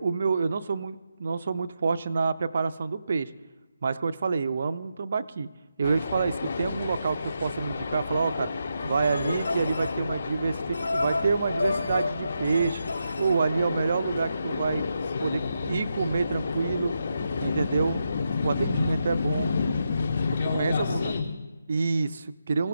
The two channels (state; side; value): inverted; both; correlation -0.85